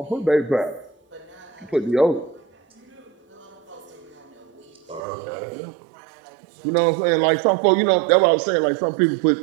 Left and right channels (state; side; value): drops out; left; at 5.0 s